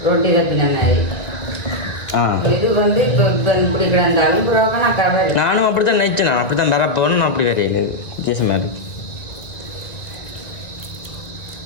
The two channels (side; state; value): right; late; 1.9 ms